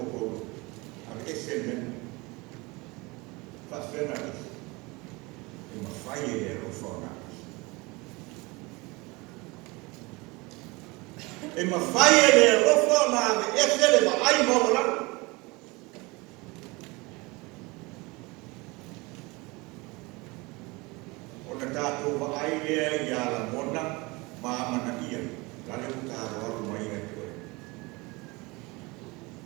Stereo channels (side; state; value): left; quieter; 24.8 dB